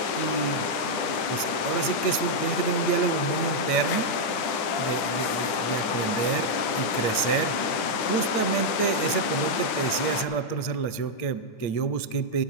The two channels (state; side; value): late; right; 10 ms